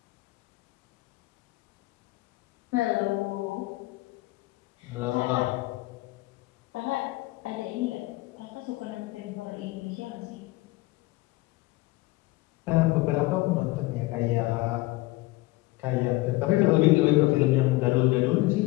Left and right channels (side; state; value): right; quieter; 20.3 dB